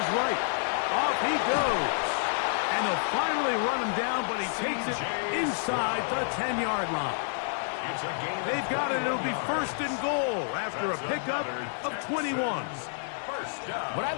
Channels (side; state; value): right; silent; digital silence